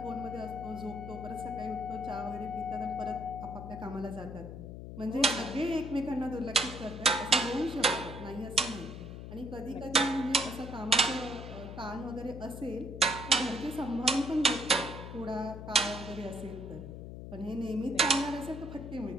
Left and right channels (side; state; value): left; noise; hum, 10 dB below the sound